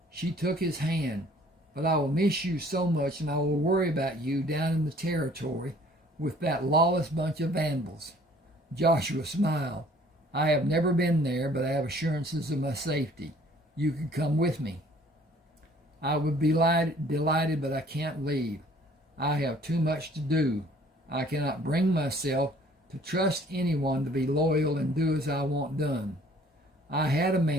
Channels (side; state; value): both; normal; correlation 0.56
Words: She took his hand. But I will miss you so much, and I will worry about you down in the territory with that lawless bunch of vandals. Joshua smiled. I have never been there, but I have assurances of my safety. You can come with me. I would be delighted, but I can't leave. I have too much to do. I cannot bring myself to trust anyone to be loyal and do as I want done. I had a